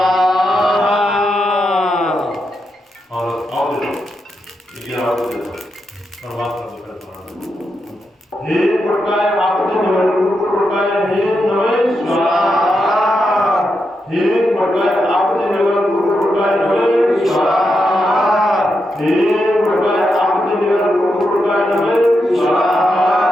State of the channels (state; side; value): normal; both; correlation 0.85